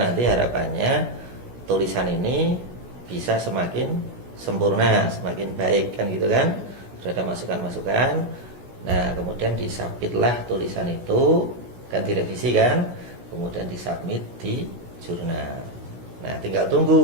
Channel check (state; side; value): late; left; 16 ms